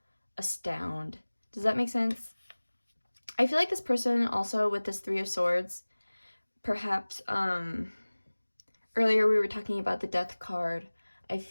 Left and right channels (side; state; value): both; inverted; correlation -1.00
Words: astound. Does that make sense? I feel like this person also with this 3 of Swords, perhaps earlier we were talking about the Death card. I